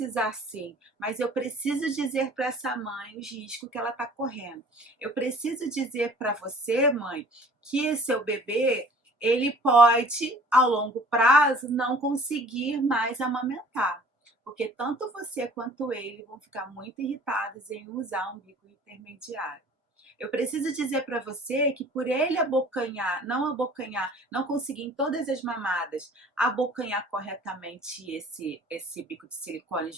sim. Mas eu preciso dizer para essa mãe os riscos que ela está correndo. Eu preciso dizer para você, mãe, que seu bebê, ele pode, ao longo prazo, não conseguir mais amamentar. Porque tanto você quanto ele vão ficar muito irritados em usar um bico intermediário. Eu preciso dizer para você que por ele abocanhar, não conseguir em todas as mamadas abocanhar corretamente esse bico de silicone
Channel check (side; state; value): both; normal; correlation 0.50